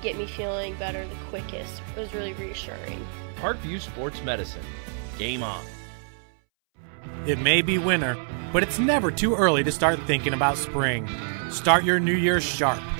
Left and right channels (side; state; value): left; silent; 61 dB below the other